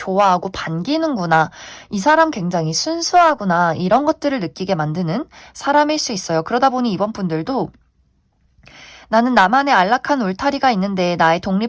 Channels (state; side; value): identical; both; correlation 1.00